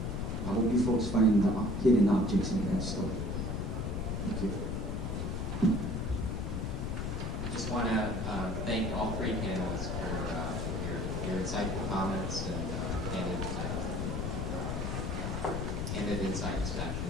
I hope you folks find the hidden objects in that story. Thank you. I just want to thank all three panelists for your insightful comments and candid insights,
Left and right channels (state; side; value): noise; left; rumble, 1 dB below the sound